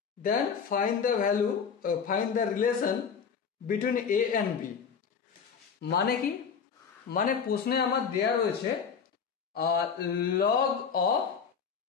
then find the relation between a and b. মানে কি? মানে প্রশ্নে আমার দেয়া রয়েছে log of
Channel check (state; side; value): quieter; right; 6.5 dB